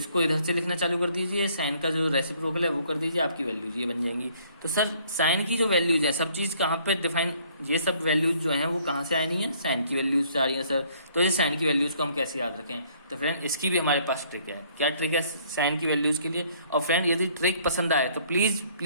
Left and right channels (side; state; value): both; inverted; correlation -0.62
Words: इधर से लिखना चालू कर दीजिए, साइन का जो रेसिप्रोकल है वो कर दीजिए, आपकी वैल्यूज ये बन जाएंगी। तो सर साइन की जो वैल्यूज है, सब चीज़ कहाँ पे डिफाइन, ये सब वैल्यूज जो हैं वो कहाँ से आई नहीं है, साइन की वैल्यूज से आ रही है सर। तो ये साइन की वैल्यूज को हम कैसे याद रखें, तो फ्रेंड इसकी भी हमारे पास ट्रिक है। क्या ट्रिक है साइन की वैल्यूज के लिए। और फ्रेंड यदि ट्रिक पसंद आए तो प्लीज़